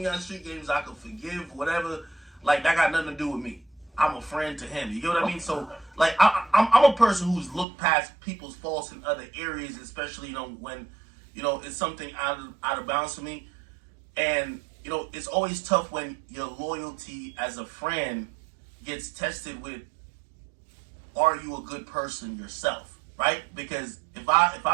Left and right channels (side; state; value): left; drops out; at 7.7 s